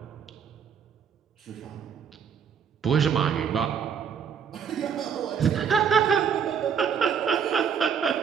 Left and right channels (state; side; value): quieter; left; 7.3 dB